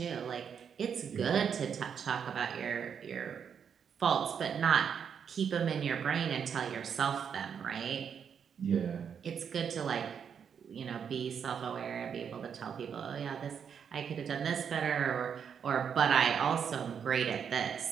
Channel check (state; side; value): quieter; left; 7.4 dB